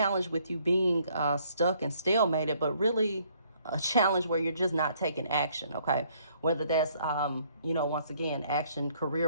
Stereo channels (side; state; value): both; inverted; correlation -0.65